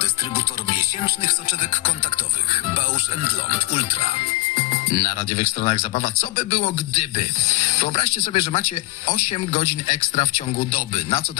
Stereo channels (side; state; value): right; quieter; 18.9 dB